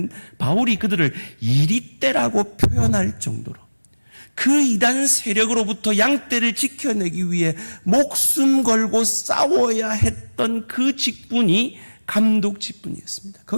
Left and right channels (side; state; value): both; inverted; correlation -1.00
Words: 바울이 그들을 이리떼라고 표현할 정도로 그 이단 세력으로부터 양떼를 지켜내기 위해 목숨 걸고 싸워야 했던 그 직분이 감독 직분이었습니다.